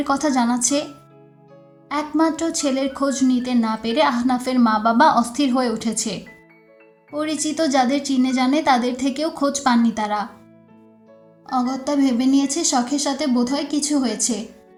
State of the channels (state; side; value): identical; both; correlation 1.00